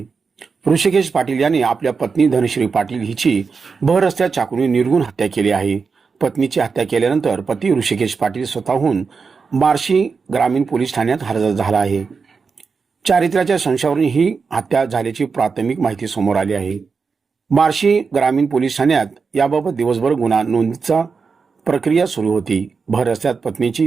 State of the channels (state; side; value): quieter; left; 5.1 dB